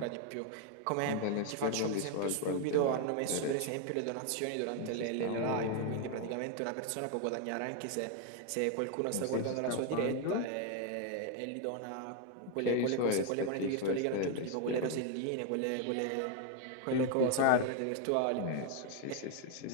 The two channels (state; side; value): different; both; correlation 0.00